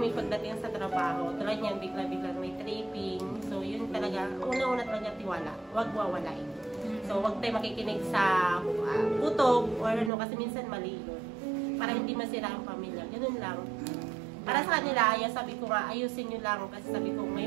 pagdating sa trabaho. Tulad niyan, bigla-bigla may tripping. So, yun talaga, una-una talaga tiwala. Huwag wawalain. So, huwag tayo makikinig sa putok or kasi minsan mali yun. Para hindi masira ang pamilya. Ganun lang. Para sa kanila, sabi ko nga, ayusin nyo lang. Kasi sabi ko,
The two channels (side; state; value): left; drops out; at 10.1 s